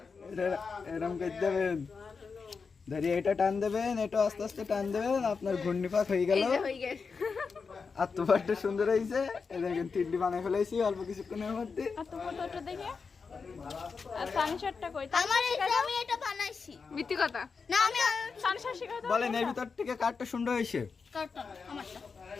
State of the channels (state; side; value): quieter; right; 5.1 dB